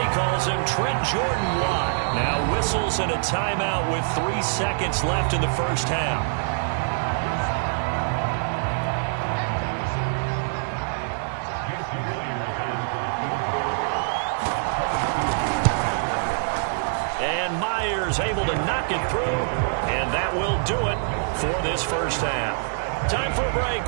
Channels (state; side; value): silent; left; 62 dB below the other